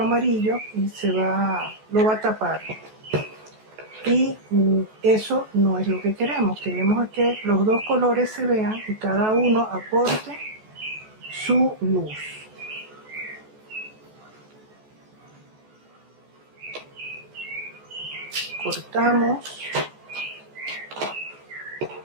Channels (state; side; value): late; left; 14 ms